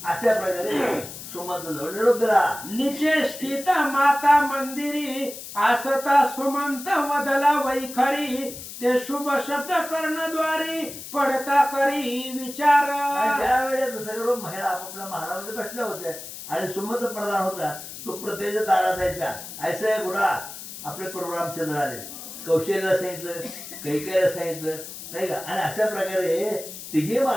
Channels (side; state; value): left; noise; hiss, 12 dB below the sound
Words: अशा प्रकारे सुमंत जवळ निरोप दिला. निचे स्थित माता मंदिरी आसता सुमंत वदला वैखरी ते शुभ शब्द कर्णद्वारी पडता करी विचार. त्यावेळेस सर्व महिला आपापल्या महालामध्ये बसल्या होत्या आणि सुमंत प्रधान होता तो प्रत्येक दारात जायचा ऐसा गुडा आपले प्रभू रामचंद्र आले कौशल्याला सांगितलं कैकेयला सांगितलं नाही का. आणि अशा प्रकारे तिघे